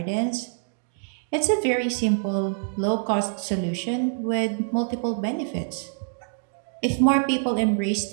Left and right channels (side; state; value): left; silent; 61 dB below the other